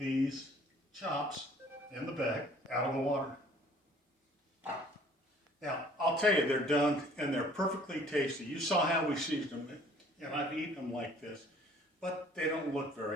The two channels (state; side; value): normal; both; correlation 0.55